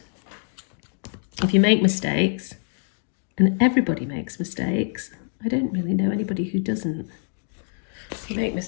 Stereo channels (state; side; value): silent; right; digital silence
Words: if you make mistakes, and everybody makes mistakes, I don't really know anybody who doesn't. If you make